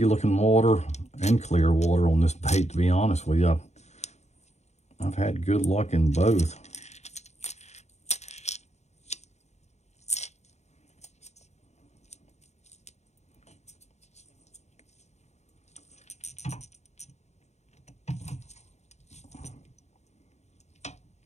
looking water and clear water on this bait, to be honest with you. I've had good luck in both.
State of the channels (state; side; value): late; right; 0.32 ms